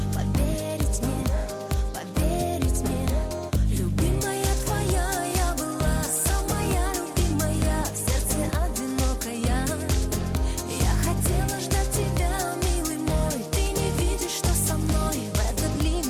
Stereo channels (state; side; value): identical; both; correlation 1.00